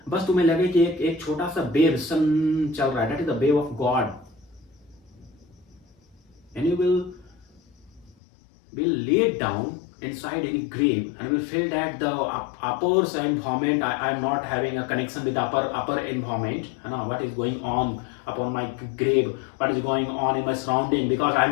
बस तुम्हें लगे कि एक छोटा सा वेव सन चल रहा है, that is the wave of God. And you will lay down inside any grave and will feel that the upper environment, I am not having a connection with the upper environment, what is going on upon my grave, what is going on in my surrounding, because I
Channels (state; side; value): drops out; right; at 8.2 s